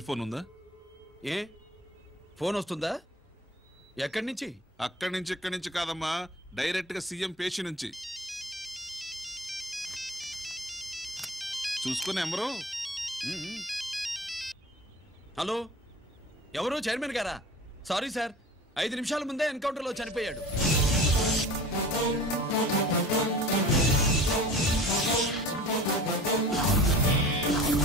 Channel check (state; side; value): normal; both; correlation 0.41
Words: ఫోన్ ఉందా? ఏ ఫోన్ వస్తుందా? ఎక్కడి నుంచి? అక్కడి నుంచి ఇక్కడి నుంచి కాదమ్మా, డైరెక్ట్ గా సీఎం పేషి నుంచి. చూసుకుని ఎవరు? హలో, ఎవరు? చైర్మన్ గారా? సారీ సార్, 5 నిమిషాల ముందే ఎన్కౌంటర్లో చనిపోయాడు.